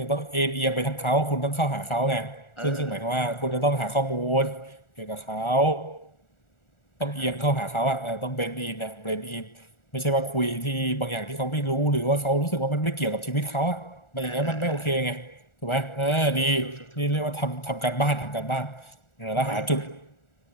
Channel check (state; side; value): late; right; 1.4 ms